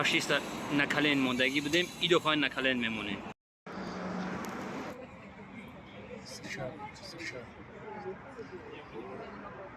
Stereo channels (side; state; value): both; identical; correlation 1.00